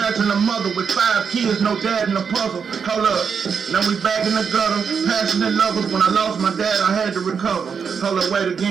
a mother with 5 kids, no dad in the puzzle. Hold up, now we back in the gutter. Passionate lovers, when I lost my dad, I had to recover. Hold up, wait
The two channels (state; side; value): quieter; left; 6.4 dB